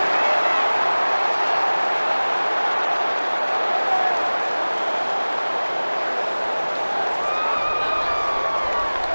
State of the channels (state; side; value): inverted; both; correlation -1.00